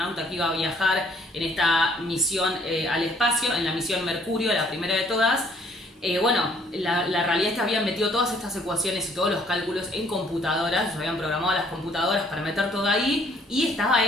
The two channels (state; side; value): normal; both; correlation 0.62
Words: que iba a viajar en esta misión al espacio, en la misión Mercurio, la primera de todas, Bueno, la realidad es que habían metido todas estas ecuaciones y todos los cálculos en computadoras, ellos habían programado las computadoras para meter todo ahí, y estaba